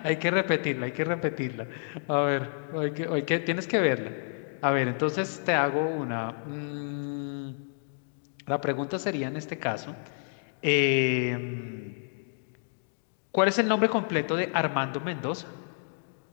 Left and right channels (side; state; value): right; silent; digital silence